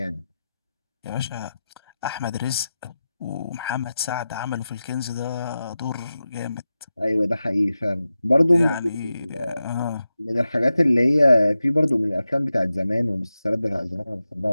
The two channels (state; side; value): inverted; both; correlation -0.92